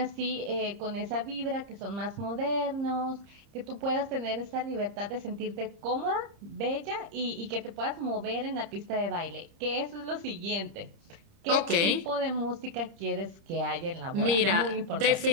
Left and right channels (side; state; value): left; late; 30 ms